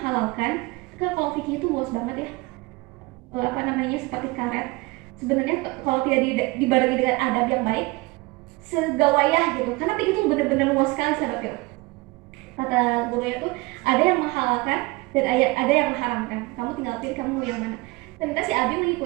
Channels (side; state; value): left; quieter; 24.0 dB